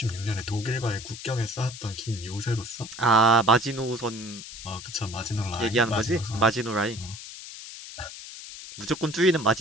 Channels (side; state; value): left; noise; hiss, 12 dB below the sound